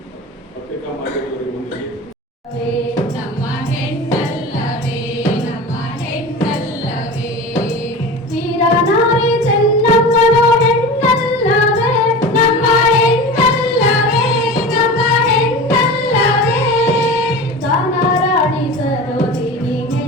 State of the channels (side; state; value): both; normal; correlation 0.32